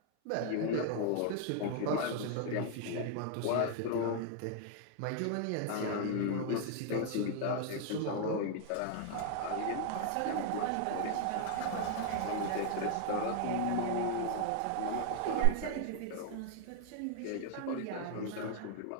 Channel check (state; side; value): different; both; correlation 0.00